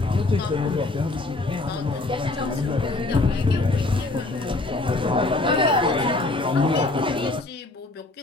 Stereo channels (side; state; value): right; quieter; 3.0 dB